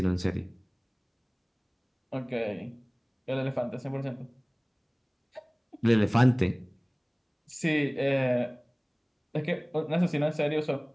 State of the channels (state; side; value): identical; both; correlation 1.00